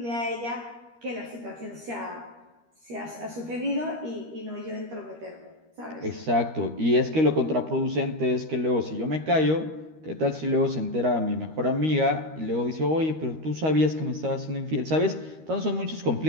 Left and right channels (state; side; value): late; left; 13 ms